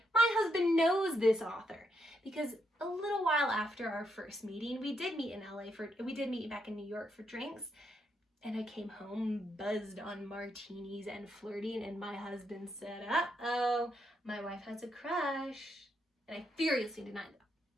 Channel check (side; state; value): both; normal; correlation 0.79